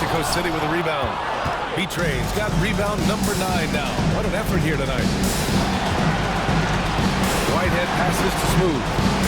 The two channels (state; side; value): identical; both; correlation 1.00